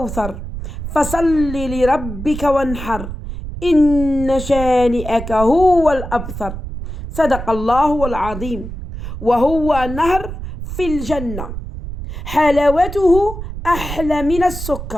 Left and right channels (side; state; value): right; noise; rumble, 8 dB below the sound